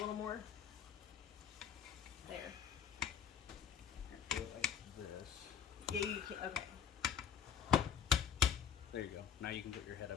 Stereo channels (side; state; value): right; quieter; 8.1 dB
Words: more? There. Do it like this. Yeah, you can, okay. There you go. Now you can put your head